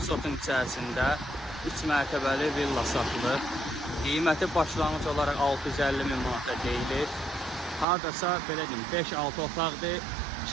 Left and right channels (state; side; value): drops out; left; at 7.9 s